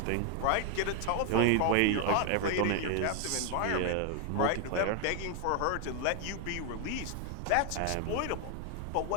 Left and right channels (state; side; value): different; both; correlation 0.01